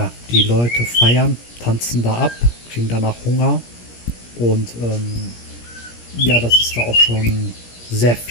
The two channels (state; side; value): late; right; 17 ms